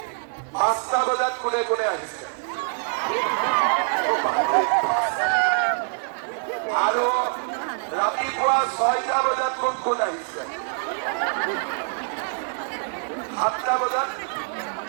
5টা বজাত কোনে কোনে আহিছে? আৰু ৰাতিপুৱা 6টা বজাত কোন কোন আহিছে? 7টা বজাত?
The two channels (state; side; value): silent; left; digital silence